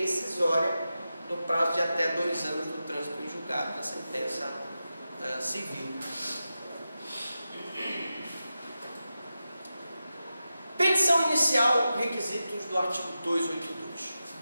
no prazo de até 2 anos do trânsito em julgado da sentença civil. Petição inicial, requisitos do artigo 282.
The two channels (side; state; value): both; inverted; correlation -0.91